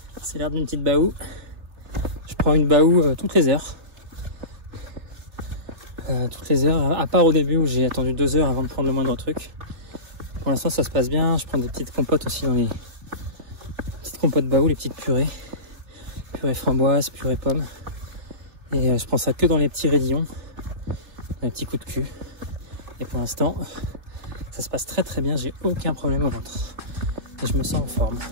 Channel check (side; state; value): left; late; 3.3 ms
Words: C'est l'air d'une petite baou. Je prends une baou toutes les heures. À part au début où j'ai attendu 2 heures avant de prendre le moindre truc. Pour l'instant ça se passe bien. Je prends des petites compotes aussi dans les petites compotes baou, les petites purées. Purée framboise, purée pomme. Et je prends ça que dans les petits raidillons. Les petits coups de cul. Et pour l'instant, ça se passe très très bien. J'ai aucun problème au ventre. Et je me sens en forme.